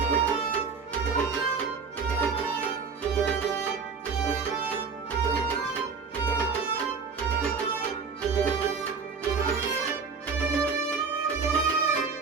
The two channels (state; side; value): quieter; left; 5.2 dB